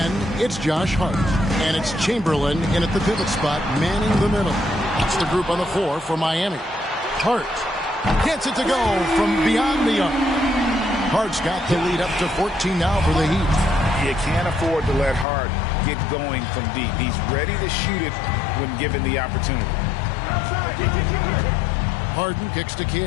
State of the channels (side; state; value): right; drops out; at 15.2 s